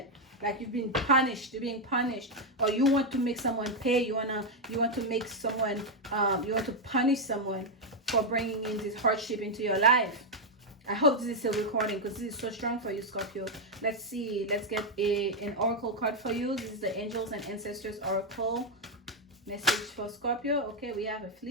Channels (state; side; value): normal; both; correlation 0.01